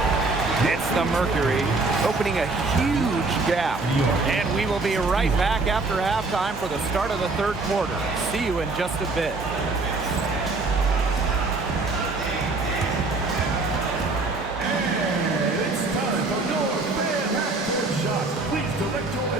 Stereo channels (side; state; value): left; quieter; 3.5 dB